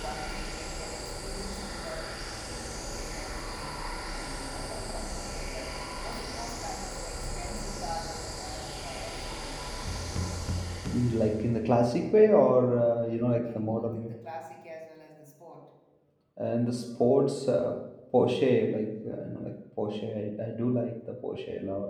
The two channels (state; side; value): identical; both; correlation 1.00